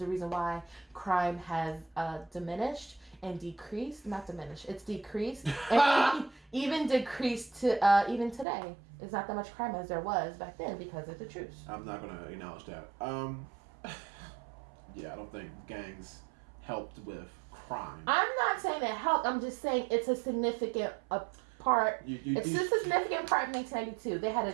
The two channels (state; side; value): drops out; left; at 8.5 s